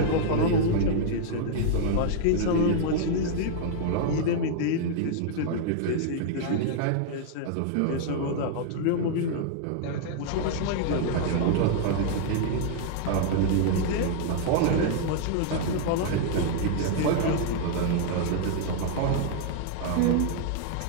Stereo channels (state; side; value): different; both; correlation -0.01